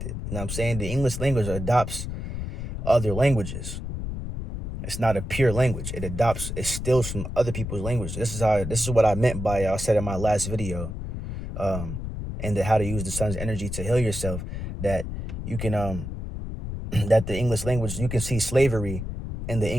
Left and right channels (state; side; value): noise; left; rumble, 6 dB below the sound